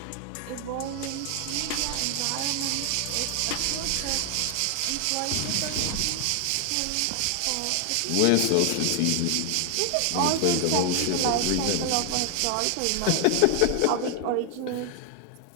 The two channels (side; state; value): both; different; correlation 0.01